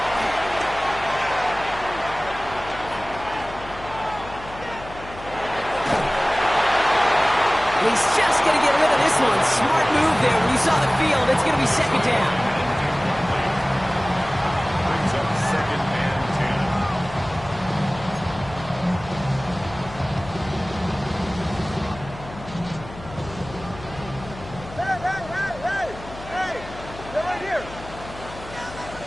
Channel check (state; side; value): noise; left; hum, 15 dB below the sound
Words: He's just going to get rid of this one. Smart move there. When you saw the field, it's going to be 2nd down. Brings up 2nd and 10. Hey! They're right here.